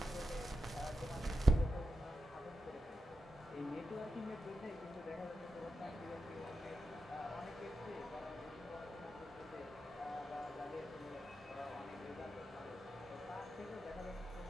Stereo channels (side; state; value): both; normal; correlation 0.89